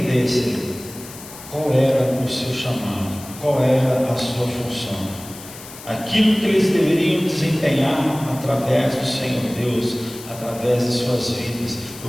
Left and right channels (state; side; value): noise; left; hiss, 16 dB below the sound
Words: qual era o seu chamado, qual era a sua função, aquilo que eles deveriam desempenhar através do Senhor Deus, através de suas vidas,